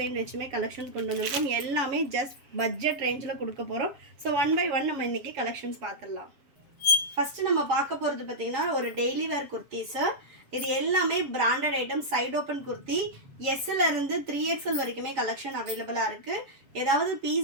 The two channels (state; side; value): late; left; 7.3 ms